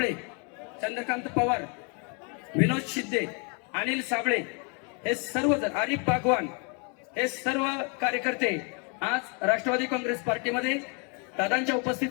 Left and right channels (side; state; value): right; quieter; 35.9 dB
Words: चंद्रकांत पवार, विनोद शिंदे, अनिल साबळे हे सर्वजण, आरिफ बागवान हे सर्व कार्यकर्ते आज राष्ट्रवादी काँग्रेस पार्टीमध्ये दादांच्या